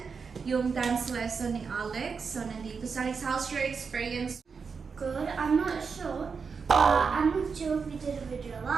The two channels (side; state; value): left; quieter; 5.5 dB